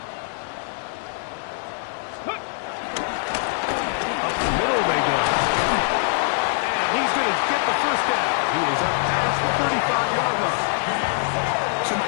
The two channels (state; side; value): silent; right; 63 dB below the other